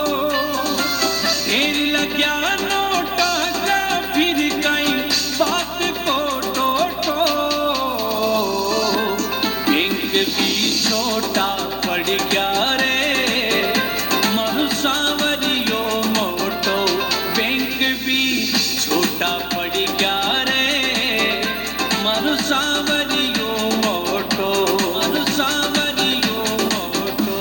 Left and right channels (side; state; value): left; noise; hum, 18 dB below the sound